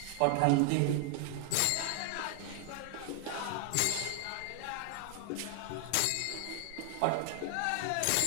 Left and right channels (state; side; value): different; both; correlation 0.00